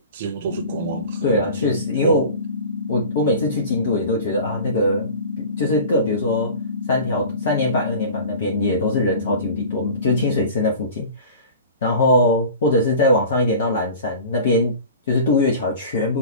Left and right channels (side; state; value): both; inverted; correlation -0.39